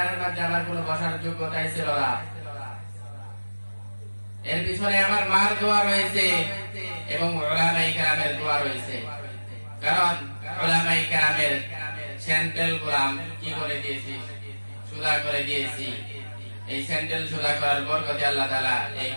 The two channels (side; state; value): both; inverted; correlation -1.00